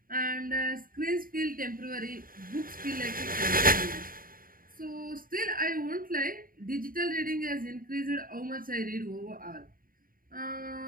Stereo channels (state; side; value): late; left; 0.41 ms